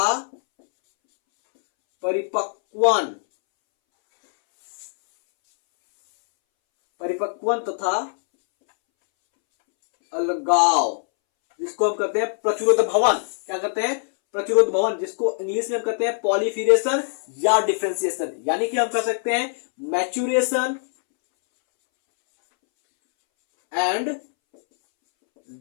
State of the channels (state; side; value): silent; right; 64 dB below the other